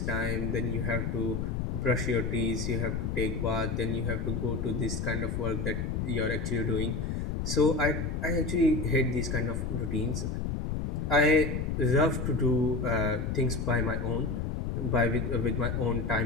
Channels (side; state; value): left; noise; rumble, 2 dB below the sound